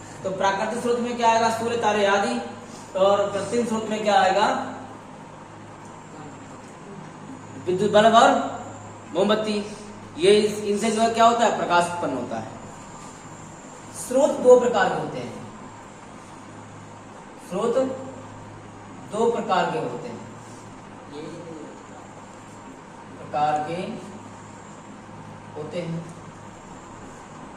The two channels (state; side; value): identical; both; correlation 1.00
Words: तो प्राकृतिक स्रोत में क्या आएगा? सूर्य, तारे आदि। और कृत्रिम स्रोत में क्या आएगा? विद्युत बल्ब और मोमबत्ती। ये इनसे जो है क्या होता है? प्रकाश उत्पन्न होता है। स्रोत दो प्रकार के होते हैं, स्रोत दो प्रकार के होते हैं,